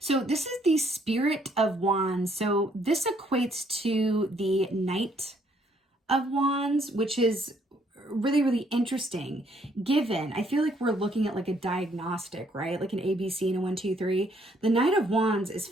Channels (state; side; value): normal; both; correlation 0.67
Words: this is the Spirit of Wands. So this equates to the Knight of Wands, which is really, really interesting. Given, I feel like we're looking at a diagnostic, right? Like an ABC and a 1, 2, 3. The Knight of Wands is